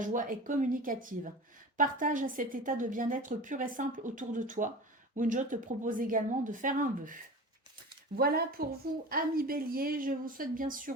joie est communicative. Partage cet état de bien-être pur et simple autour de toi. Wunjo te propose également de faire un vœu. Voilà pour vous, amis Bélier. Je vous souhaite bien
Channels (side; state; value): both; normal; correlation 0.34